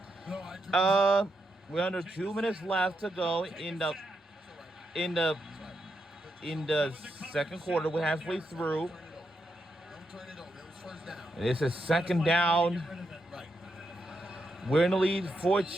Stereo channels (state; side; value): normal; both; correlation 0.83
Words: to? We're under 2 minutes left to go in the second quarter. We're halfway through. This is second down. We're in the lead